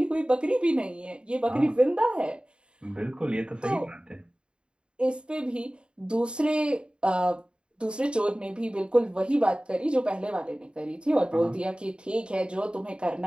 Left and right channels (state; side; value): late; left; 0.053 ms